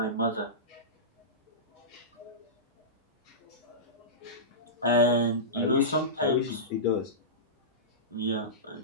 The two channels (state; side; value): normal; both; correlation -0.19